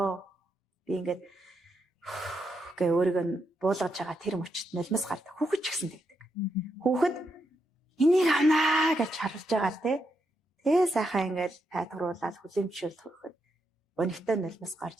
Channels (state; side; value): normal; both; correlation 0.82